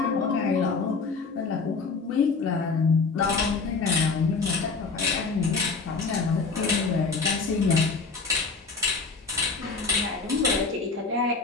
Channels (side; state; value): right; quieter; 4.4 dB